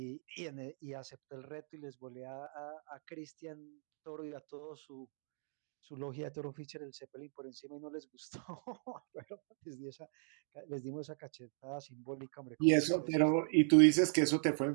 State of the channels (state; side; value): silent; left; 52 dB below the other